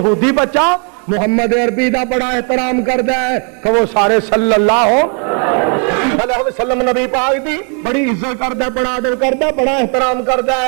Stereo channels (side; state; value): left; quieter; 39.8 dB